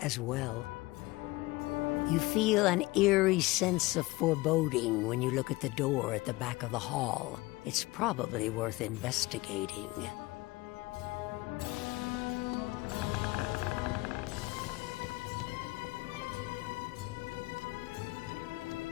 as well. You feel an eerie sense of foreboding when you look at the door at the back of the hall. It's probably worth investigating.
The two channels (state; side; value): quieter; right; 21.0 dB